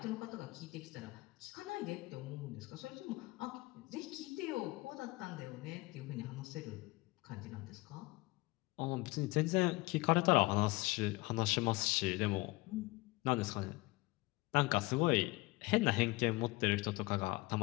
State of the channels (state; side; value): quieter; right; 22.3 dB